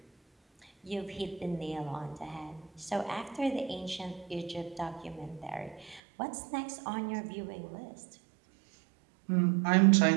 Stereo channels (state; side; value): drops out; left; at 6.0 s